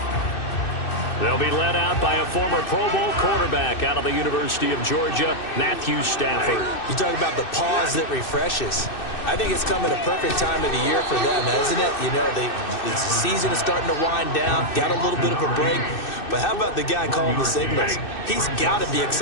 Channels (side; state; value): right; late; 2.6 ms